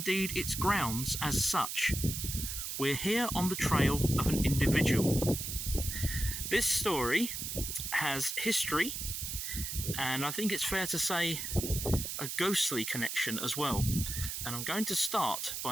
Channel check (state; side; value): noise; right; hiss, 4 dB below the sound